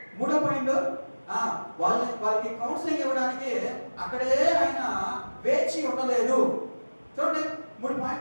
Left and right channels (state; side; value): inverted; both; correlation -1.00